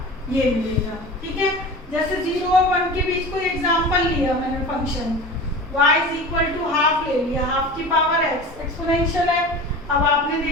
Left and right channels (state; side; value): normal; both; correlation 0.34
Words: ये मिलेगा, ठीक है। जैसे 0 और 1 के बीच कोई एग्जांपल लिया मैंने, function y is equal to half ले लिया, हाफ की पावर x, एक्सपोनेंशियल है। अब आपने